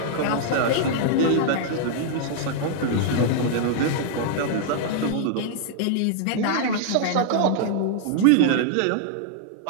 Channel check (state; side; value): different; both; correlation -0.01